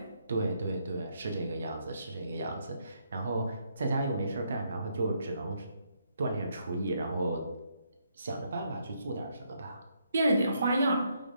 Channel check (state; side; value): inverted; both; correlation -0.75